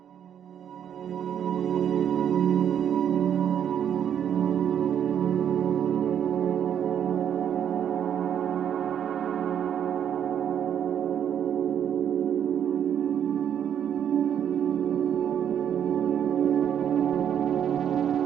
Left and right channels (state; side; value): quieter; left; 9.1 dB